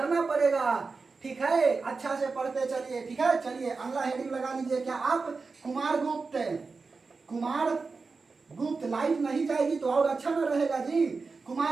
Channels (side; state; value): left; quieter; 4.3 dB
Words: पड़ेगा। ठीक है, अच्छा से पढ़ते चलिए। ठीक है, चलिए अगला हेडिंग लगा लीजिए। क्या आप? कुमारगुप्त लाइट नहीं जाएगी तो और अच्छा ना रहेगा जी।